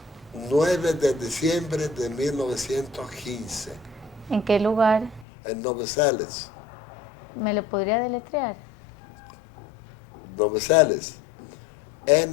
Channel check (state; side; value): drops out; right; at 5.2 s